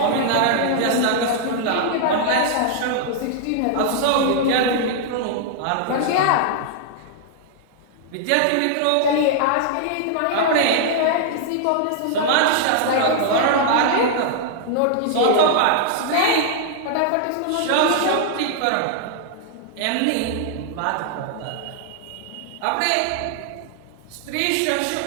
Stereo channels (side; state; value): both; different; correlation -0.01